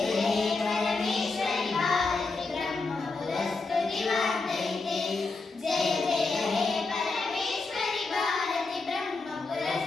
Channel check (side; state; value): right; quieter; 3.8 dB